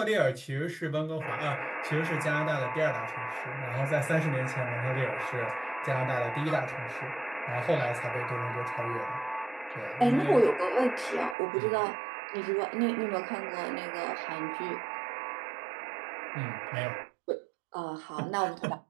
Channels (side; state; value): left; drops out; at 11.4 s